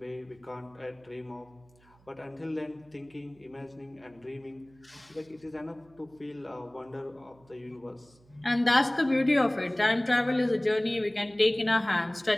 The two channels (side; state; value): right; noise; hum, 29 dB below the sound